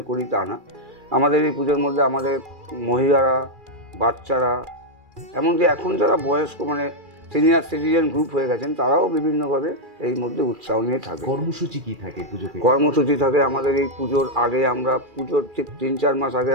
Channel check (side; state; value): left; late; 2.4 ms